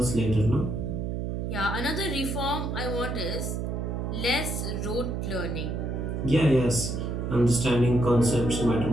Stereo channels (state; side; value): noise; right; hum, 2 dB below the sound